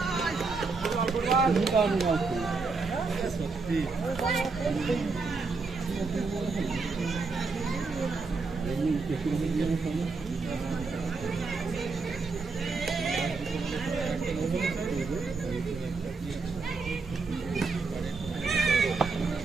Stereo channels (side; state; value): left; quieter; 4.2 dB